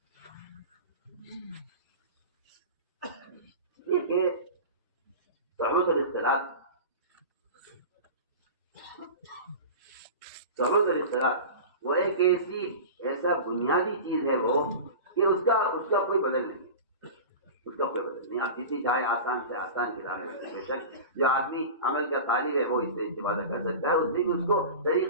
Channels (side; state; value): both; inverted; correlation -0.32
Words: یہ کہ صحبت اور اختلاط وہ ایک ایسا بنیادی چیز ہے وہ کہ اس کا کوئی بدل نہیں ہے، اس کا کوئی بدل نہیں. آپ جتنی چاہے آسان سے آسان کتاب ہے، بے شک جو آدمی عمل کا طالب ہے وہ اس سے استفادہ کر سکتا ہے، اس سے بھی اس کو